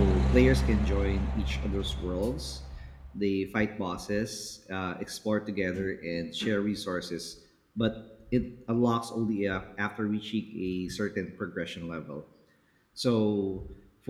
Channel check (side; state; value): both; identical; correlation 1.00